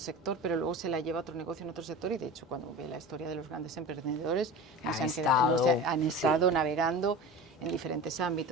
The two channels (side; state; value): both; normal; correlation 0.33